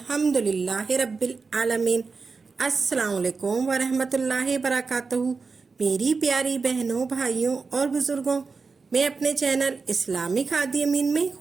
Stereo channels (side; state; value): left; quieter; 4.6 dB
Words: رب العالمین۔ السلام علیکم ورحمۃ اللہ وبرکاتہ۔ میری پیاری بہنوں، بھائیوں اور بزرگوں، میں اپنے چینل اسلامی کھادی امین میں